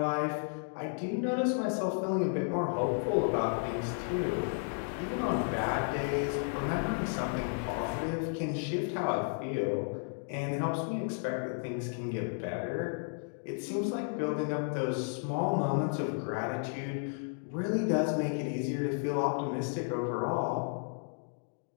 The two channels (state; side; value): silent; right; 56 dB below the other